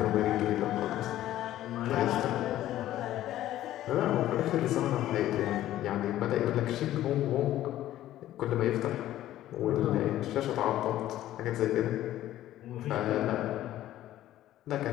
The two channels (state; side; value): quieter; right; 13.6 dB